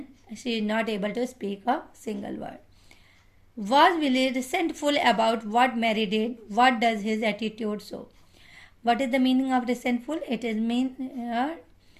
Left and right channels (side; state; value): both; identical; correlation 1.00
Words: she is not able to speak a single word. Was Billy resentful about what Mary did? What does his attitude show? What is the meaning of resentful? It is